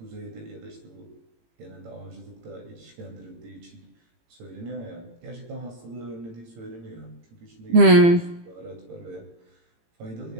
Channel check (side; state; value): left; late; 18 ms